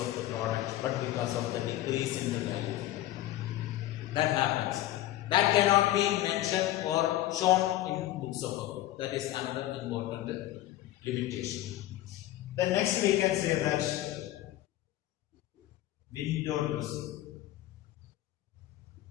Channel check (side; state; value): right; quieter; 14.6 dB